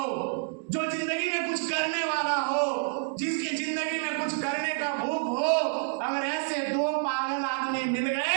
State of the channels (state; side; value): silent; left; digital silence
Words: जो जिंदगी में कुछ करने वाला हो, जिसकी जिंदगी में कुछ करने का भूख हो, अगर ऐसे 2 पागल आदमी मिल